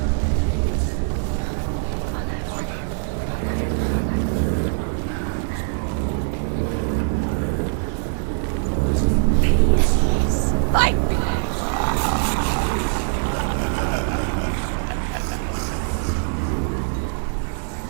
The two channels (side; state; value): left; silent; digital silence